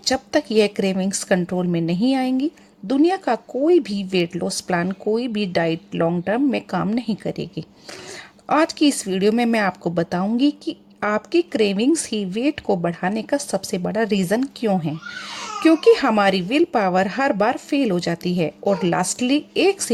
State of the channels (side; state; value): both; identical; correlation 1.00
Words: जब तक यह क्रेविंग्स कंट्रोल में नहीं आएंगी, दुनिया का कोई भी वेट लॉस प्लान, कोई भी डाइट लॉन्ग टर्म में काम नहीं करेगी। आज की इस वीडियो में मैं आपको बताऊंगी कि आपकी क्रेविंग्स ही वेट को बढ़ाने का सबसे बड़ा रीज़न क्यों है। क्योंकि हमारी will power her bar fail हो जाती है। और लास्टली एक